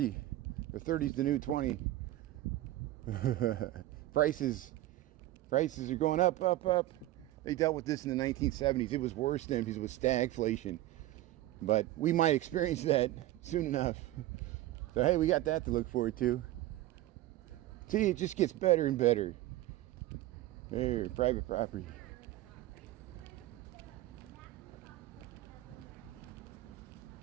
Or 30's the new 20. Prices are going up. They dealt with this in the 1970s. It was worse then because it was stagflation. But we might experience that soon enough. So hey, we got that to look forward to. See, it just gets better and better. Here, private property.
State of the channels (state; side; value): quieter; left; 15.6 dB